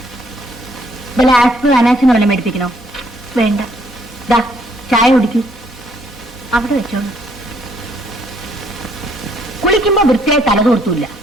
വല്ല ആസ്പ് അനാച്ചിന് വല്ലതും മേടിപ്പിക്കണോ? വേണ്ട. ദാ ചായ കുടിക്കൂ. അവിടെ വെച്ചോളൂ. കുളിക്കുമ്പോ വൃത്തിയായി തലതോർത്തൂല്ല,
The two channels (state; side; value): normal; both; correlation 0.67